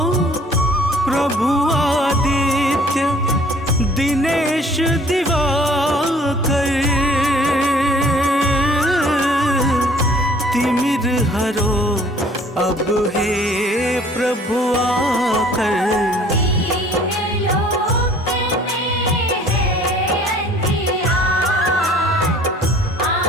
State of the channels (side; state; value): both; normal; correlation 0.55